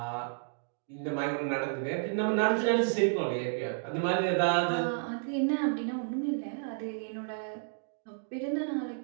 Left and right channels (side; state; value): left; silent; digital silence